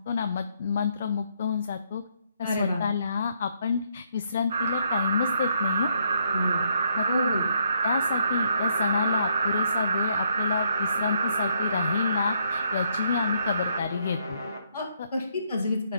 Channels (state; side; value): inverted; both; correlation -0.72